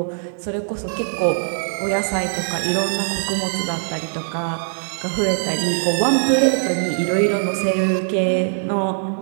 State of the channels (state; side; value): silent; left; digital silence